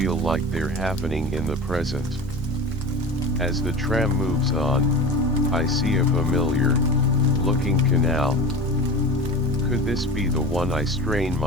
like they're happening in the present. As the tram moves on, I see a familiar looking canal. Could this be the one I strain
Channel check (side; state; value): both; normal; correlation 0.32